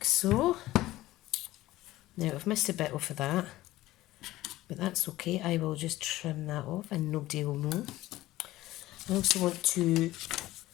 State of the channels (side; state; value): right; quieter; 16.5 dB